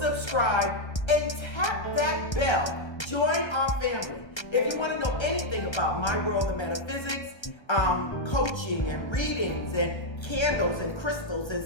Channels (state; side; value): late; right; 1.3 ms